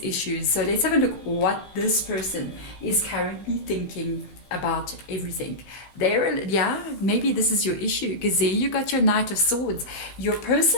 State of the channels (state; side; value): late; right; 15 ms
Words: So let's have a look what this person is currently thinking about everything. Maybe this is your issue, because there you got your Knight of Swords. Your